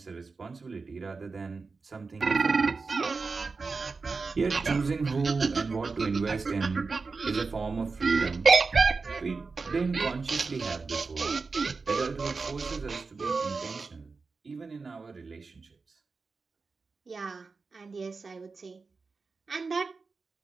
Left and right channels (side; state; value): left; quieter; 4.4 dB